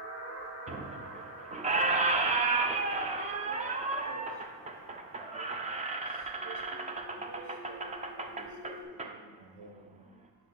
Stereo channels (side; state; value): left; quieter; 3.0 dB